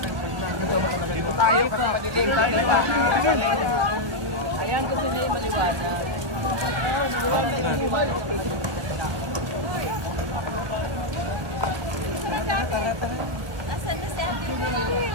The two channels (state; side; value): late; left; 1.2 ms